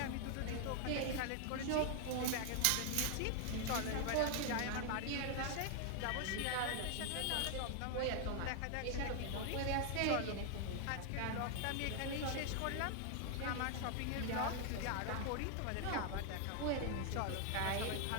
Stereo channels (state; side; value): different; both; correlation 0.00